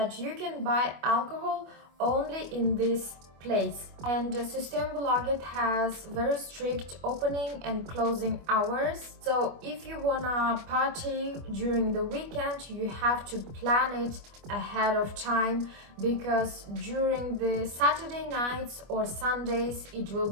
you can buy alcohol only in this place. And Systembolaget has very strict opening and closing hours. So if you wanna party during the weekend, you have to plan it ahead of time because during the Saturday nights or Sundays it will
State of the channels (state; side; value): late; left; 25 ms